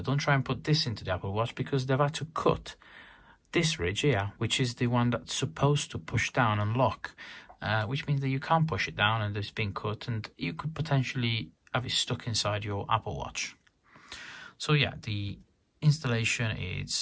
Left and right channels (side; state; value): both; identical; correlation 1.00